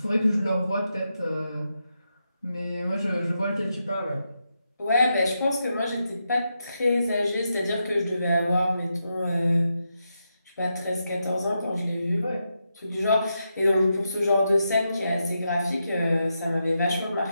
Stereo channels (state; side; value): inverted; both; correlation -0.85